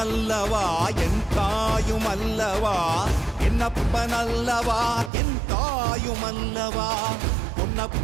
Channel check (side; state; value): left; drops out; at 5.1 s